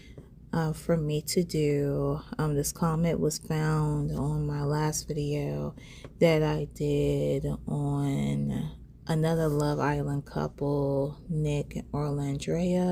for me to do. This comment was found on my last video that I did on another Love Island couple, Nick and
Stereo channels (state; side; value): identical; both; correlation 1.00